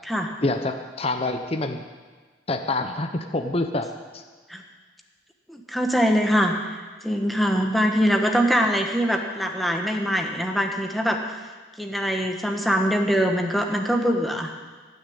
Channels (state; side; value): normal; both; correlation 0.76